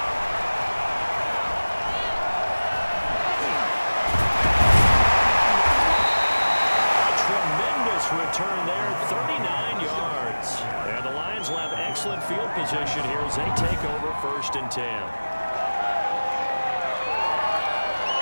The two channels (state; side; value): inverted; both; correlation -1.00